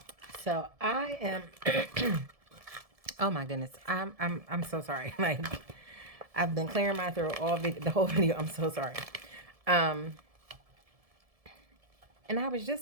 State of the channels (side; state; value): left; late; 1.7 ms